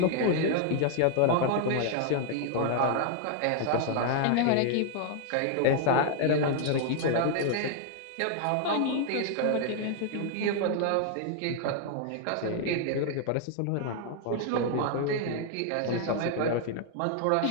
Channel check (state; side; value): different; both; correlation 0.00